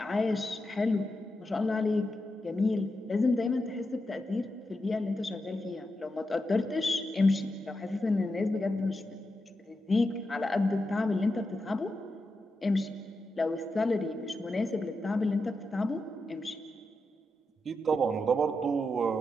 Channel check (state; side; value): normal; both; correlation 0.87